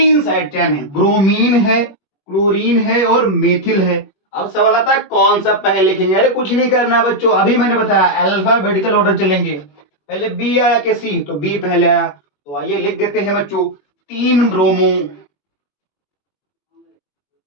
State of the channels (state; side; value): late; right; 21 ms